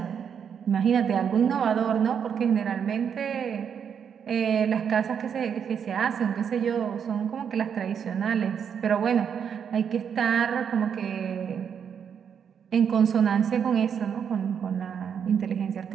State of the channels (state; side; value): quieter; left; 7.6 dB